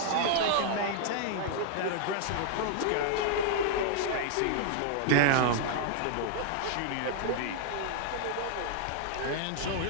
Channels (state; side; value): different; both; correlation 0.00